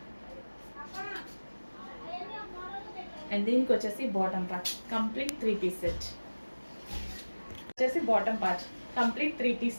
అండ్ దీనికి వచ్చేసి bottom part complete 3 piece set. వచ్చేసి bottom part complete 3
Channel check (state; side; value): inverted; both; correlation -1.00